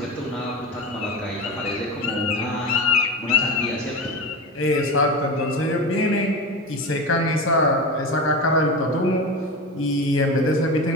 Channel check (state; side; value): normal; both; correlation 0.25